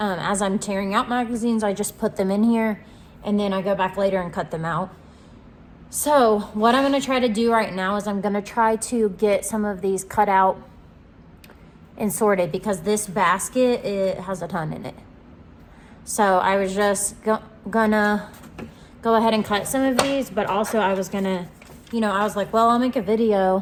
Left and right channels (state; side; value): identical; both; correlation 1.00